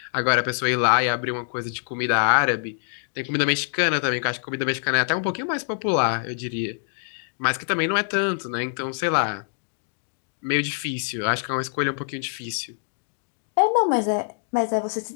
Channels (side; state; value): right; silent; digital silence